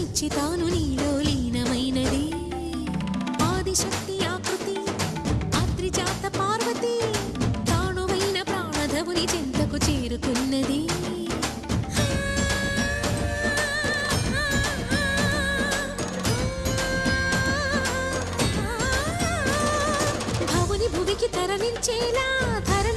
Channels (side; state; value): both; identical; correlation 1.00